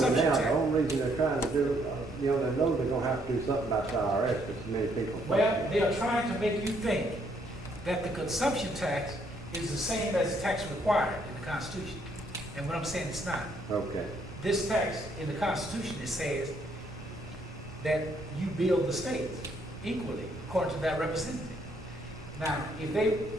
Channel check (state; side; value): normal; both; correlation 0.70